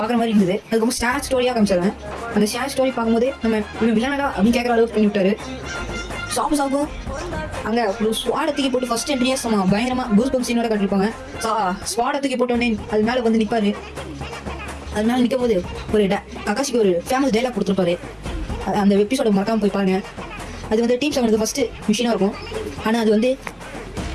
மாதிரி இருந்தது. அதுக்கப்புறம் ஷேர் ஸ்டோரியாக காமிச்சாங்க. அந்த ஷேர் ஸ்டோரி பார்க்கும்போது நம்ம இவன் வில்லனடா அப்படின்னு கேட்குற அளவுக்கு பண்ணி விட்டாரு. சாபுசாவுக்கும் அங்கே ஒரு ஸ்வாடத்துக்கு போட்டு ஃபர்ஸ்ட் என்ட்ரியே பயங்கரமாக கூஸ் பம்ப் சீனோட காட்டிருப்பாங்க. ஸ்வாடத்துக்கு போட்டோடனே அது மேலே வந்து நிற்பாரு. அது மேலே நிற்கும் போது ஒரு ககாஷிக்கு ஒரு ஃபேமஸ் டைலாக் கொடுத்துருப்பாரு. அந்த எபிசோட மறக்காம போய் பாருங்க. அது வந்து டீம் 7 ஃபர்ஸ்ட் மிஷினாக இருக்கும். ஆனால் அது வந்து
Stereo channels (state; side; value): identical; both; correlation 1.00